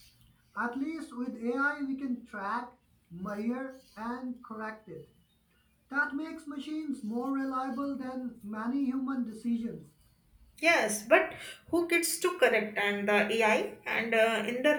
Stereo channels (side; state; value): both; identical; correlation 1.00